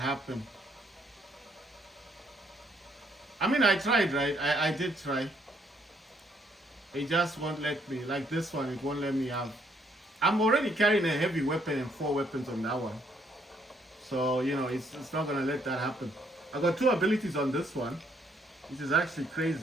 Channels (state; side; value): normal; both; correlation 0.69